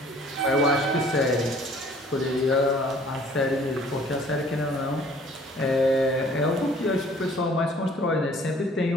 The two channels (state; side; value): normal; both; correlation 0.55